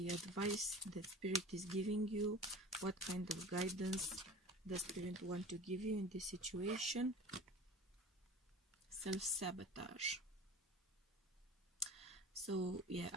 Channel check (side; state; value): both; normal; correlation 0.39